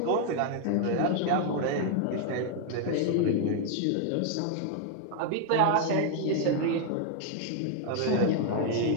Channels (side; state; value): both; different; correlation 0.00